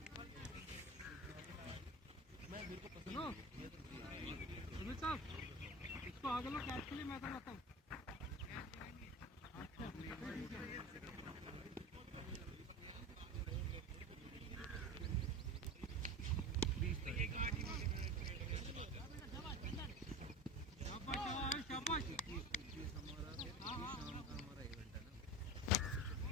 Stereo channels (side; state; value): both; normal; correlation 0.31